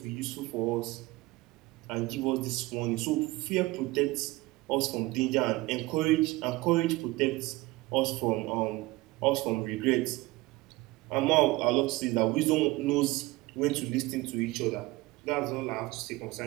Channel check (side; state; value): left; quieter; 20.7 dB